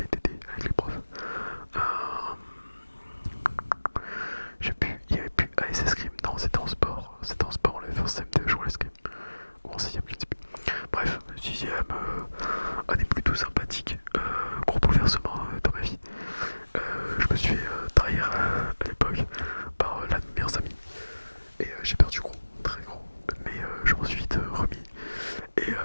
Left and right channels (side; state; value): both; inverted; correlation -1.00